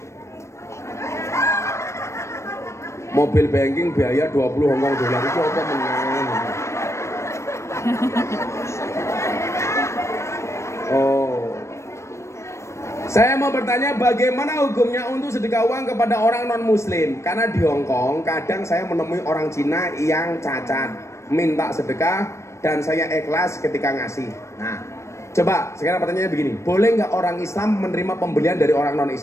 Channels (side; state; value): right; late; 0.13 ms